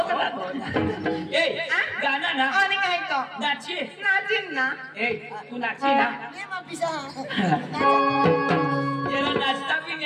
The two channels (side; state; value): both; identical; correlation 1.00